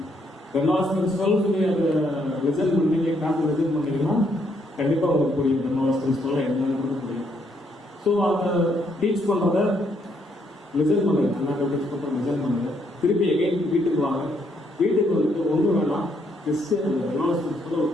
கன்வாஸ் பிரின்சிபல் சொல்லி அதை ரிசல்ட் பண்ணீங்க, கிளாஸ் ரிசல்ட் பண்ணீங்கன்னா கண்டிப்பாக உங்களுக்கு புரியும். கன்வாஸ் பிரின்சிபல் என்னன்னு புரியும். ஸோ அதை டீச் பண்ணுறத ரிசல்ட் பண்ணுங்க, அண்ணாக்க டீச் பண்ணுற ரிசல்ட் பண்ணுங்க. திருப்பி எகைன் வீட்டுக்கு வாங்க. வீட்டுக்கு வந்துட்டு ஒன்றும் வேணாம், ஜஸ்ட் அந்த கன்வாஸ் பிரின்சிபல் ஒரு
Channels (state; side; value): normal; both; correlation 0.73